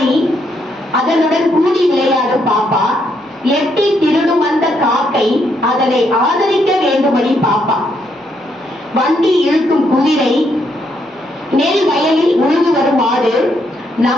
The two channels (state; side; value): normal; both; correlation 0.75